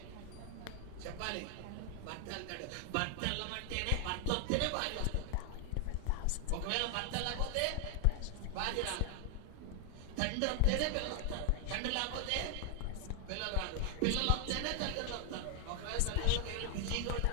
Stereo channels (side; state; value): both; different; correlation 0.00